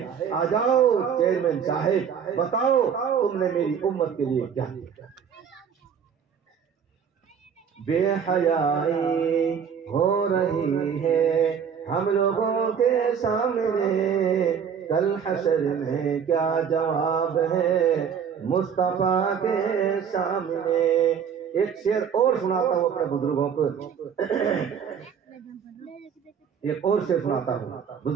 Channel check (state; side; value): quieter; left; 7.4 dB